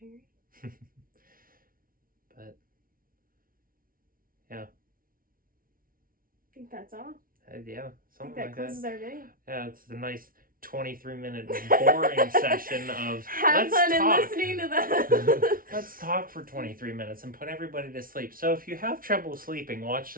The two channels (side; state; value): left; late; 0.42 ms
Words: But, yeah. I think that's all. Yeah, something I think that like closes that. our video. Yeah, it's a nice 23-minute boring session of have fun in listening to that. Let's talk for 23 minutes and put everybody to sleep. So if you have trouble sleeping, watch